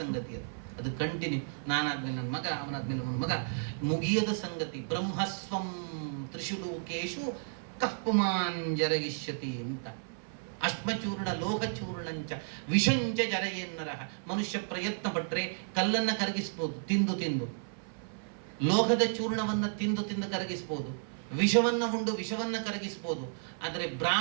ಅದು ಕಂಟಿನ್ಯೂ, ನಾನಾದ್ಮೇಲೆ ನನ್ನ ಮಗ, ಅವನಾದ್ಮೇಲೆ ನನ್ನ ಮಗ, ಮುಗಿಯದ ಸಂಗತಿ. ಬ್ರಹ್ಮಸ್ವಂ ತ್ರಿಶುಲೋಕೇಶು ಕಪ್ಪುಮಾನ್ ಜರಗಿಷ್ಯತಿ ಅಂತ. ಅಶ್ಮಚೂರ್ಣ ಲೋಹಚೂರ್ಣಂಚ ವಿಷಂಚ ಜರಯೇನ್ನರ. ಮನುಷ್ಯ ಪ್ರಯತ್ನ ಪಟ್ರೆ ಕಲ್ಲನ್ನ ಕರಗಿಸ್ಬೋದು, ತಿಂದು ತಿಂದು. ಲೋಹದ ಚೂರ್ಣವನ್ನ ತಿಂದು ತಿಂದು ಕರಗಿಸ್ಬೋದು, ವಿಷವನ್ನ ಉಂಡು ವಿಷವನ್ನ ಕರಗಿಸ್ಬೋದು. ಆದರೆ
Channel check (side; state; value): left; silent; 56 dB below the other